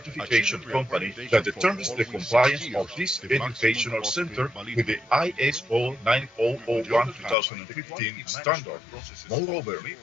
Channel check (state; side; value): drops out; right; at 7.4 s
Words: company that determines the compliance of this educational center with the ISO 9001-2015 standard. Moreover,